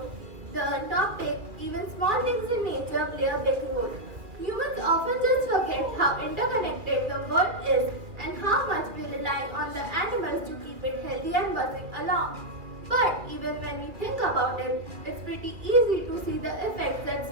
the topic even small things in nature play a big role. Humans often just forget how interconnected the world is and how much we rely on the animals to keep it healthy and buzzing along. But even when we think about it, it's pretty easy to see the effects that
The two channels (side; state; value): left; late; 2.4 ms